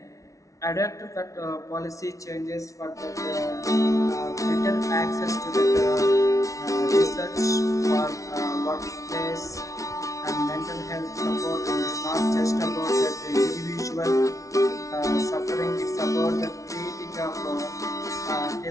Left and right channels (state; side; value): late; right; 0.16 ms